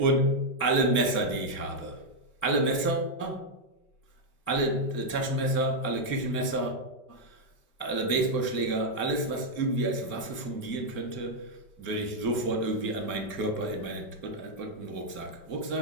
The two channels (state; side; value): late; right; 5.2 ms